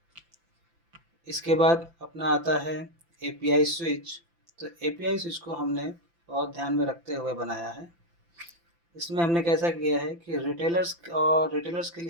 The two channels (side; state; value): left; late; 5.9 ms